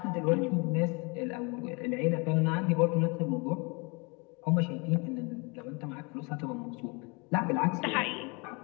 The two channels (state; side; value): quieter; right; 30.7 dB